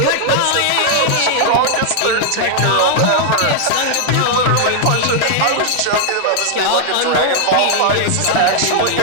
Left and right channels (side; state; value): both; different; correlation -0.01